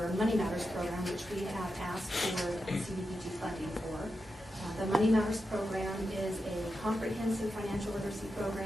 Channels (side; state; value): both; normal; correlation 0.89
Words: Money Matters program, which we have asked for CDBG funding for. The Money Matters program is a comprehensive financial literacy